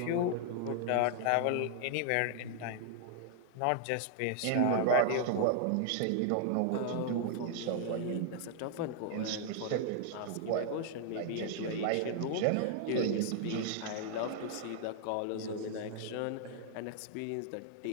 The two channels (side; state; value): both; different; correlation 0.00